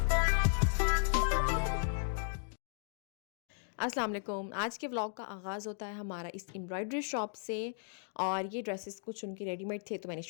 वालेकुम। आज के व्लॉग का आगाज़ होता है हमारा इस एम्ब्रॉयडरी शॉप से। और ये ड्रेसेस कुछ उनके रेडीमेड थे तो मैंने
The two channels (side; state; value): right; silent; digital silence